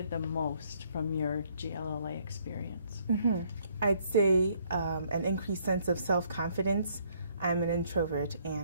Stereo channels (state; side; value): inverted; both; correlation -0.66